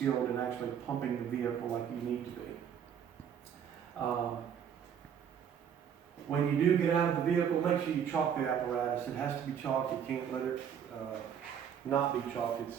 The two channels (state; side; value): quieter; left; 8.3 dB